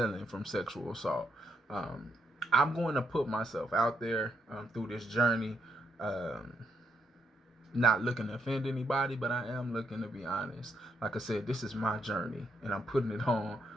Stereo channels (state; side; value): normal; both; correlation 0.77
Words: from sexual assault. Um, I'm going to put myself out there through this journey, um, not looking to offend anybody, but I am looking to be honest. Like I said, this is my journey, and I'm putting it on,